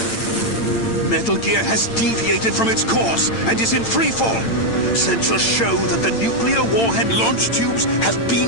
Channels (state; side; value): late; right; 8.8 ms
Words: Metal Gear has deviated from its course and is in free fall. Sensors show that the nuclear warhead launch tubes have